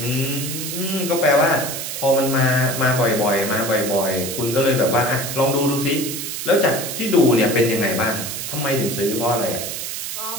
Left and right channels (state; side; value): noise; right; hiss, 5 dB below the sound